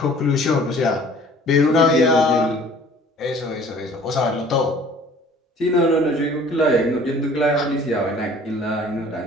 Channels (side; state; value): both; normal; correlation 0.51